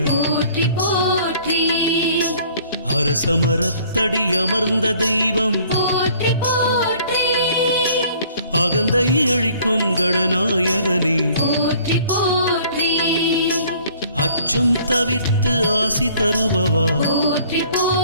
போற்றி போற்றி, அரசமரத்தடி அமர்ந்த தெய்வம் போற்றி போற்றி, அகந்தை அழிக்கும் கணநாயகனே போற்றி போற்றி, அச்சம் தவிர்த்து ஆசி தருபவா போற்றி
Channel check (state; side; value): inverted; both; correlation -0.55